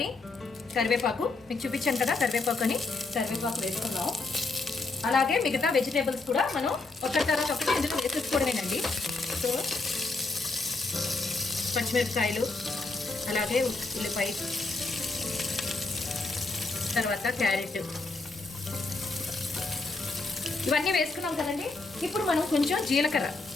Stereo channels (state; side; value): quieter; right; 3.5 dB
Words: కరివేపాకు మీకు చూపించాను కదా, కరివేపాకు వేసుకుందాం. అలాగే మిగతా వెజిటేబుల్స్ కూడా మనం ఒకటి తర్వాత ఒకటి ఇందులో వేసేసుకోవడమేనండి. సో పచ్చిమిరపకాయలు, అలాగే ఉల్లిపాయ, తర్వాత క్యారెట్, ఇవన్నీ వేసుకున్నాం కదండి. ఇప్పుడు మనం కొంచెం జీలకర్ర